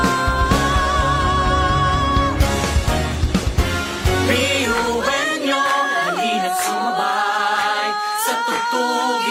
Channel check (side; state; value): both; identical; correlation 1.00